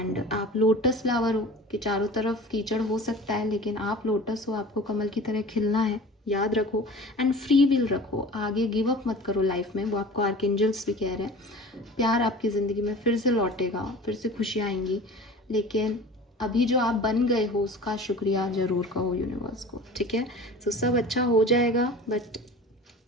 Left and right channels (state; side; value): normal; both; correlation 0.40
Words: आप लोटस फ्लावर हो कि चारों तरफ कीचड़ हो सकता है लेकिन आप लोटस हो, आपको कमल की तरह खिलना है, याद रखो। एंड फ्री विल रखो, आगे गिव अप मत करो लाइफ में, वो आपको आर्कएंजल्स भी कह रहे हैं। प्यार आपकी ज़िंदगी में फिर से लौटेगा, फिर से खुशियाँ आएंगी, लेकिन अभी जो आप बन गए हो उसका शुक्रिया ज़रूर कहो यूनिवर्स को, ठीक है। सो सब अच्छा हो जाएगा, बट